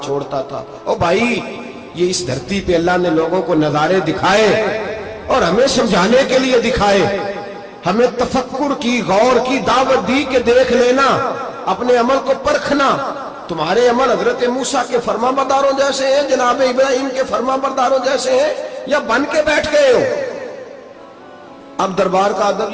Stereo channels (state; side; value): identical; both; correlation 1.00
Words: چھوڑتا تھا. او بھائی یہ اس دھرتی پہ اللہ نے لوگوں کو نظارے دکھائے اور ہمیں سمجھانے کے لیے دکھائے. ہمیں تفکر کی, غور کی دعوت دی کہ دیکھ لینا, اپنے عمل کو پرکھنا. تمہارے عمل حضرت موسیٰ کے فرما برداروں جیسے ہیں, جناب ابراہیم کے فرما برداروں جیسے ہیں, یا بن کے بیٹھ گئے ہو؟ اب دربار کا ادب